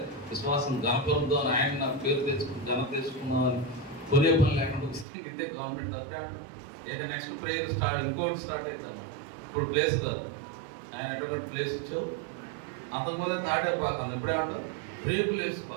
విశ్వాసం గణపంతో ఆయన నాకు పేరు తెచ్చుకుని ఘన తెచ్చుకున్నామని కొనే పని లేకుండా వస్తే ఇదే గవర్నమెంట్ అప్పుడే అంటారు. ఇక నెక్స్ట్ ప్రేయర్ ఇంకోటి స్టార్ట్ అవుతాం. ఇప్పుడు ప్లేస్ కాదు, ఆయన ఎటువంటి ప్లేస్ ఇచ్చావు, అంతకుముందే తాటైపోతాను. ఇప్పుడే అంటావు రేకులు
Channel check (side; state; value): left; drops out; at 5.1 s